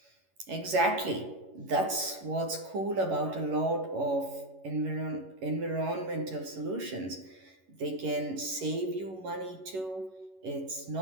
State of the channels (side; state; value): left; late; 11 ms